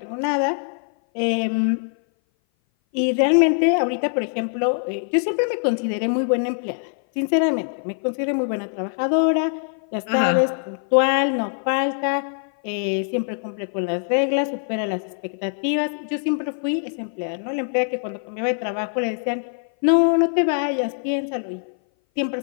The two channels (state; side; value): silent; right; 58 dB below the other